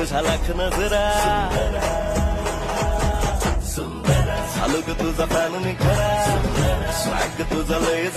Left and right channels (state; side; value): identical; both; correlation 1.00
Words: लाख नजरा झालो ग तुझा फॅन मी खरा स्वॅग तुझा लय